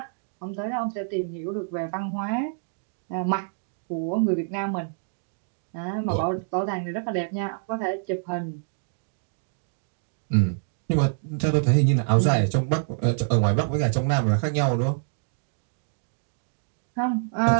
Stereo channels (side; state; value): left; silent; digital silence